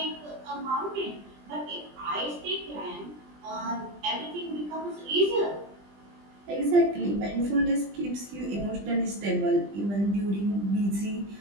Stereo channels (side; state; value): left; late; 20 ms